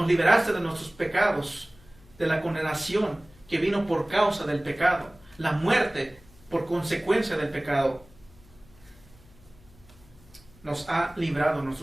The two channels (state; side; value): noise; left; hum, 25 dB below the sound